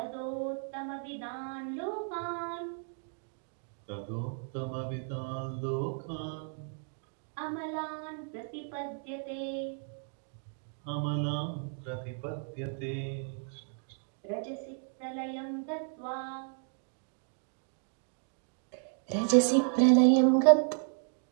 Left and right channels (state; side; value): silent; left; 55 dB below the other